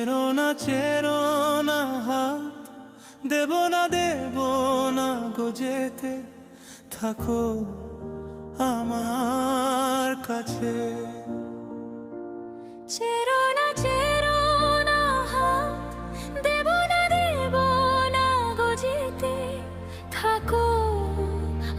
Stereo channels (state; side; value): identical; both; correlation 1.00